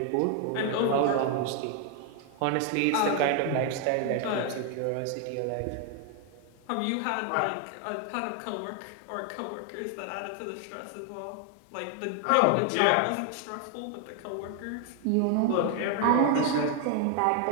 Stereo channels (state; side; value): different; both; correlation 0.01